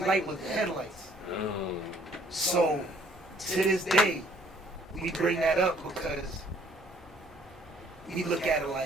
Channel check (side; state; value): both; normal; correlation 0.60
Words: was the headlights. So to this day, we bring that up because we look at it